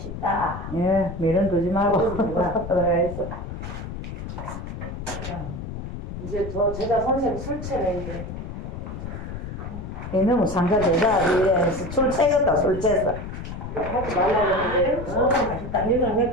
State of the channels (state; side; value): noise; left; rumble, 8 dB below the sound